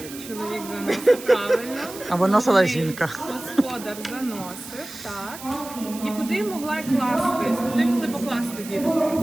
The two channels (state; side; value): noise; right; hiss, 14 dB below the sound